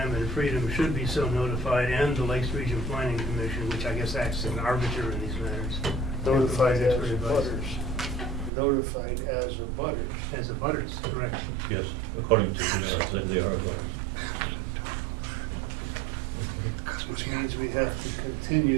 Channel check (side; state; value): left; drops out; at 8.5 s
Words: and Freedom should be so notified, and the Lakes Region Planning Commission, which I guess acts as an arbiter in these matters. Notified as Expert a advice. butters. Notified as a butters. As a butters, correct. Yes, according to they are. Which means we have to